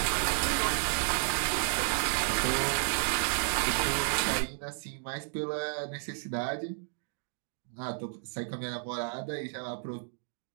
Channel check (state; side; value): silent; left; digital silence